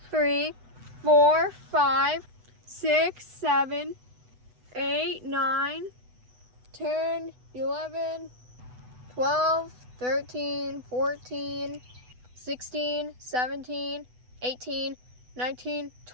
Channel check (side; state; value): left; late; 8.0 ms